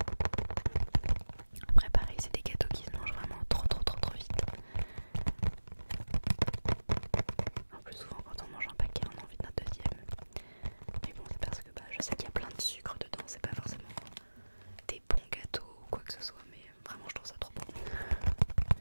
Après pareil, c'est des gâteaux qui se mangent vraiment trop vite. En plus souvent quand on mange un paquet on a envie d'un deuxième. Mais bon c'est parce que je sais qu'il y a plein de sucre dedans, c'est pas forcément des bons gâteaux ou quoi que ce soit, mais vraiment je trouve ça trop bon.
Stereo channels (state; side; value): inverted; both; correlation -1.00